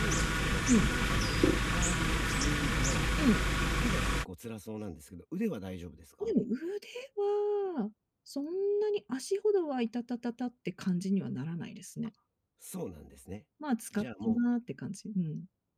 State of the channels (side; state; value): both; identical; correlation 1.00